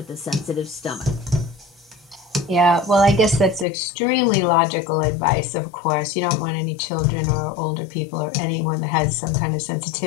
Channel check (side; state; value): right; drops out; at 3.7 s